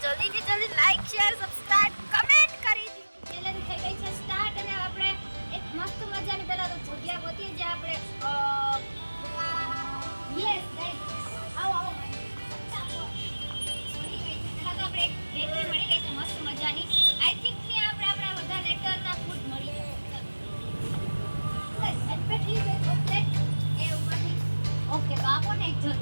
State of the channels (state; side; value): inverted; both; correlation -1.00